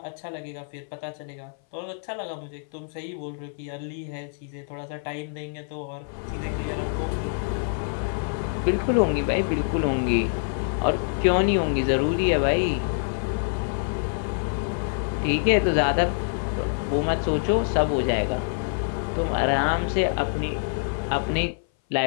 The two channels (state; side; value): silent; right; 58 dB below the other